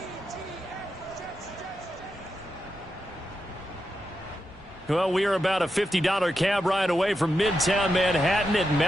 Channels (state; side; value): normal; both; correlation 0.87